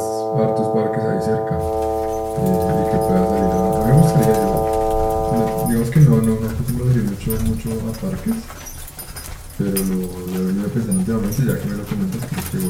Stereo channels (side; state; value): both; identical; correlation 1.00